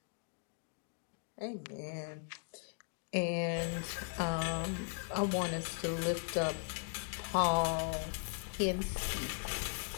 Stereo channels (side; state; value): right; silent; 52 dB below the other